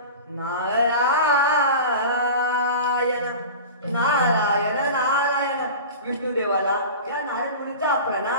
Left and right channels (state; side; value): inverted; both; correlation -0.33